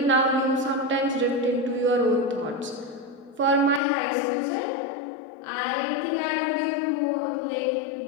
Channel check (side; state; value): right; drops out; at 3.8 s